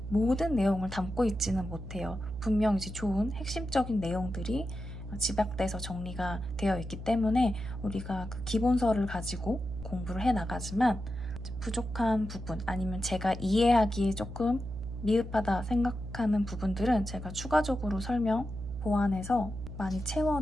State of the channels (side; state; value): right; noise; hum, 8 dB below the sound